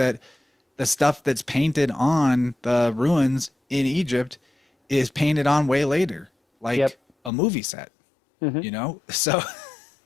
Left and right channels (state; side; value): drops out; right; at 7.3 s